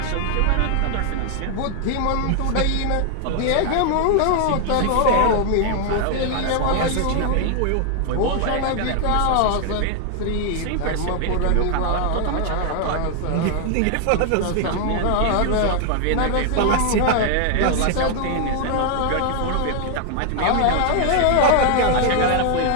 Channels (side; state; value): both; different; correlation 0.00